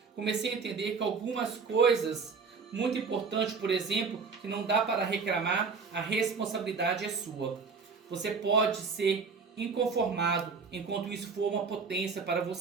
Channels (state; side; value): quieter; left; 5.1 dB